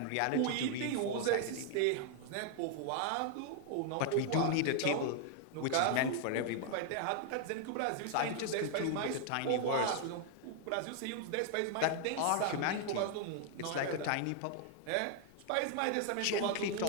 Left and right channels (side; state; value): both; different; correlation 0.00